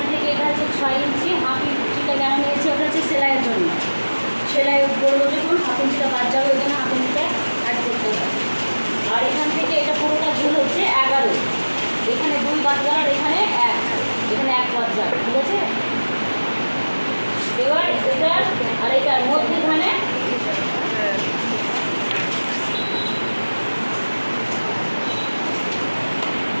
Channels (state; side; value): inverted; both; correlation -1.00